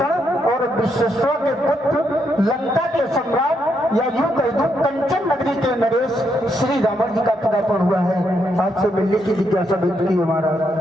और विश्वेश्वर के पुत्र, लंका के सम्राट, या यूं कह दूं कंचन नगरी के नरेश श्री रावण जी का पदार्पण हुआ है। आपसे मिलने की जिज्ञासा व्यक्त की हमारा।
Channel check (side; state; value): both; normal; correlation 0.78